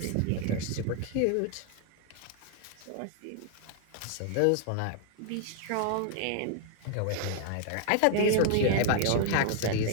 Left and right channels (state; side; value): different; both; correlation 0.00